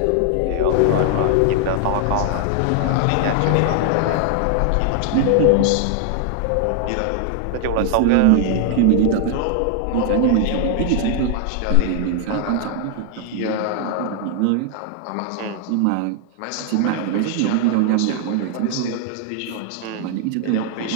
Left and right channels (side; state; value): both; different; correlation 0.00